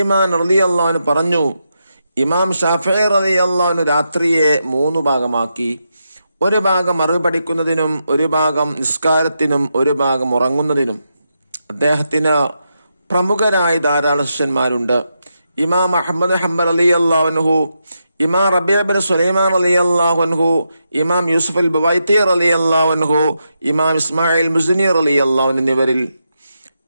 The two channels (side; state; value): both; inverted; correlation -0.85